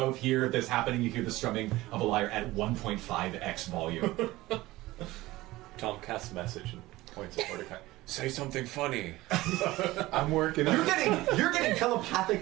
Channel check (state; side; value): quieter; left; 18.3 dB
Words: hear this happening. You hear the strumming of a lyre at 1.5x volume. Tom casts a message and points at Mordecai. Say something funny. I'm working. You're getting